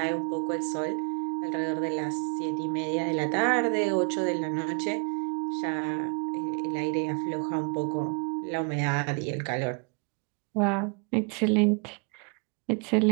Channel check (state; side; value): quieter; left; 38.7 dB